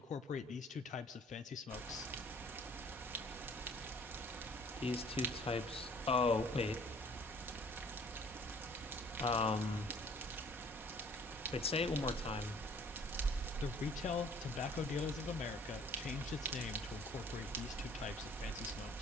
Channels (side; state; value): both; normal; correlation 0.55